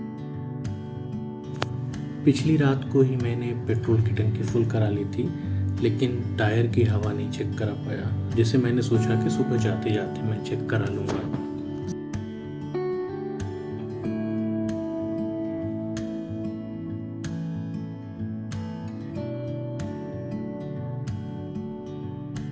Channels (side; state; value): both; identical; correlation 1.00